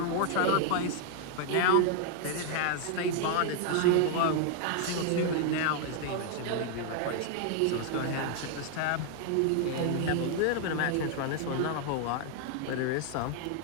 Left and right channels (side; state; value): both; different; correlation 0.00